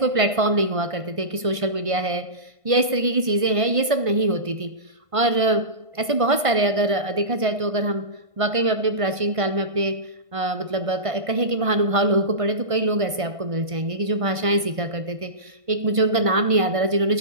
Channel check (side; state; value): left; late; 1.5 ms